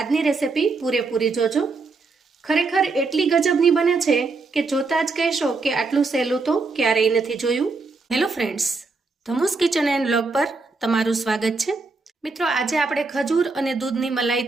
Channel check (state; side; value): quieter; left; 3.9 dB